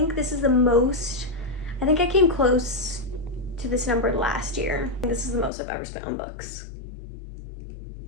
this is the most, I think I came close to this number last year. This is the most I've ever spent on books.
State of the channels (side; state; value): right; drops out; at 5.5 s